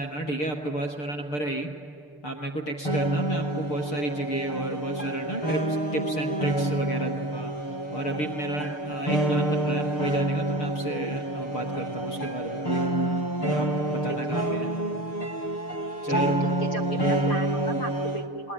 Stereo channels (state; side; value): late; right; 6.7 ms